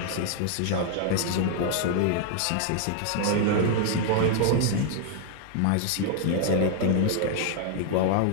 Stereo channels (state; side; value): different; both; correlation 0.00